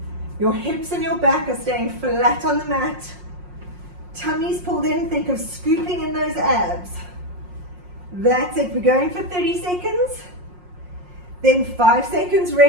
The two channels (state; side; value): late; left; 5.5 ms